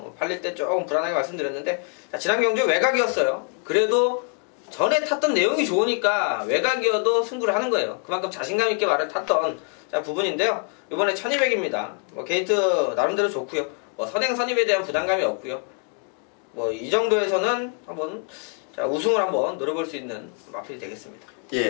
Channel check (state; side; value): quieter; right; 38.3 dB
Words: 팔릴 때 조금 불안하게 말씀드렸는데, 자, 지난 경주 외곽이었어요. 그래도 전에 탔던 내용이 좋으니까 외곽이어도 승부를 하는 거예요. 그만큼 자신감 있게 말을 탔던 부분인데요. 이번에 1200입니다. 게이트 나름대로 좋고요. 선행 선입에 대한 부담감이 없고요. 이 정도에서는 한번 우승을 한번 노려볼 수 있는 마필이 되겠습니다. 예,